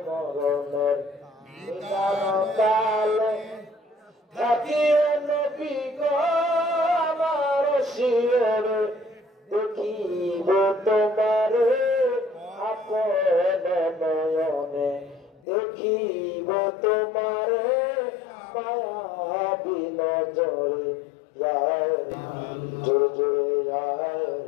মরণের নিদান কালে থাকিয়ে নবী গো আমার শিয়রে, দেখিব তোমারে আপন নয়নে, দেখিব তোমারে মায়া বিনজরে। ইয়া জোরে ইয়া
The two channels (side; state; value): right; drops out; at 15.4 s